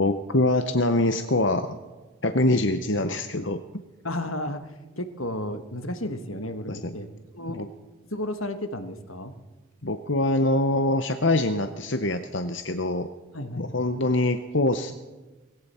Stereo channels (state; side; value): normal; both; correlation 0.17